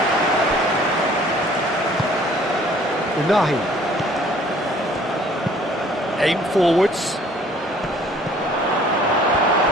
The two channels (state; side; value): normal; both; correlation 0.55